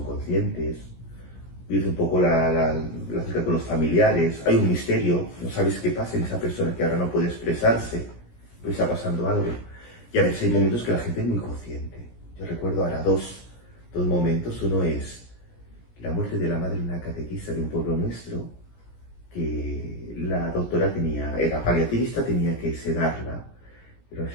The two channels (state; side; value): late; right; 17 ms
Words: conscientes, vives un poco la cerca con los familiares, hay un misterio, no sabes qué pasa en esa persona que ahora no puede expresarse, pues está pasando algo. Y a veces hay momentos que la gente es muy consciente. Yo recuerdo ahora dos momentos. Uno es la muerte de la madre de una catequista de un pueblo nuestro, que la doctora era paliativista, tenía que sedarla. Era una